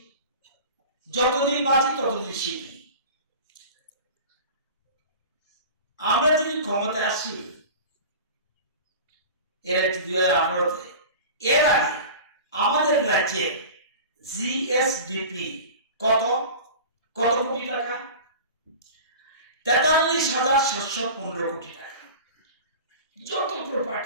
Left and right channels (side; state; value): both; inverted; correlation -0.36